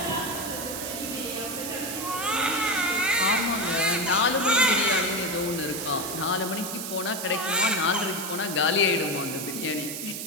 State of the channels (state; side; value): noise; right; hiss, 6 dB below the sound